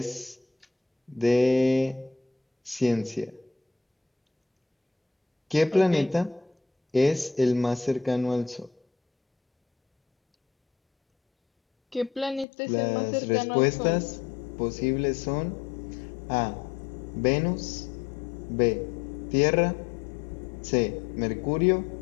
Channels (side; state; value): right; drops out; at 12.5 s